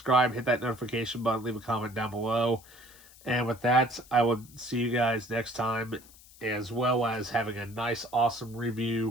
hit that notification button, leave a comment down below. And with that, I will see you guys next time, as well as having a nice, awesome review,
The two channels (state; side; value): noise; left; hiss, 23 dB below the sound